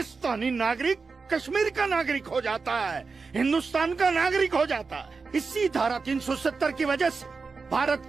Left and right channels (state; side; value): quieter; left; 4.6 dB